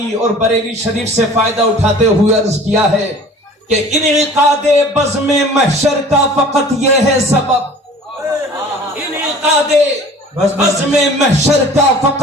اور بریلی شریف سے فائدہ اٹھاتے ہوئے عرض کیا ہے کہ انعقاد بزم محشر کا فقط یہ ہے سبب، انعقاد بزم محشر کا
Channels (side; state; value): both; normal; correlation 0.46